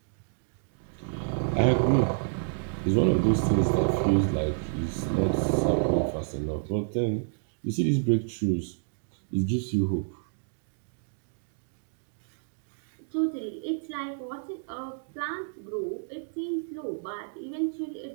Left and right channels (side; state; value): left; silent; digital silence